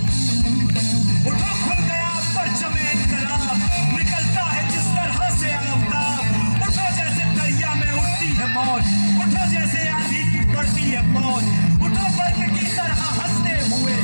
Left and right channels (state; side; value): inverted; both; correlation -1.00